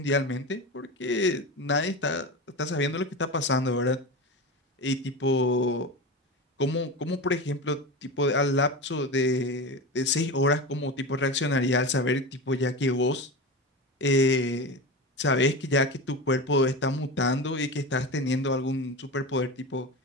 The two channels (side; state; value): both; normal; correlation 0.25